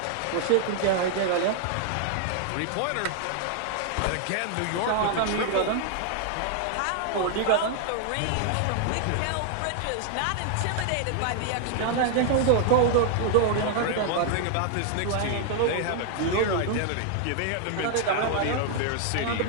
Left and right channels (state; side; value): different; both; correlation 0.00